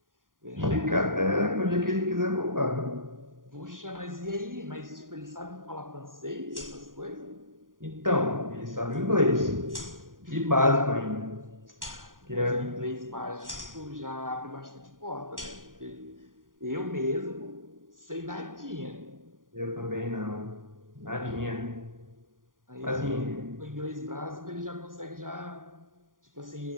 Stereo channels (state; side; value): late; left; 0.90 ms